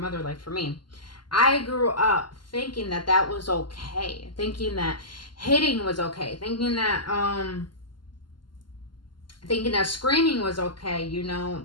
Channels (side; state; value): right; late; 0.71 ms